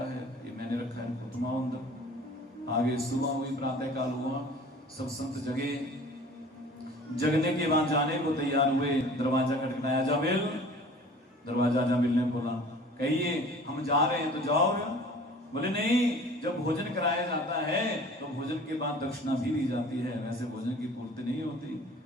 है, ये मैंने रखा है, तुम आओ अंदर। आगे सुबह हुई, प्रातः काल हुआ, सब संत जगे। जगने के बाद जाने को तैयार हुए, दरवाजा खटखटाया, अजामिल। दरवाजा अजामिल ने खोला, कहिए हम जा रहे हैं। तो जाओ। बोले नहीं, जब भोजन कराया जाता है तो भोजन के बाद दक्षिणा भी दी जाती है, वैसे भोजन की पूर्ति नहीं होती।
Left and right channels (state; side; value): normal; both; correlation 0.46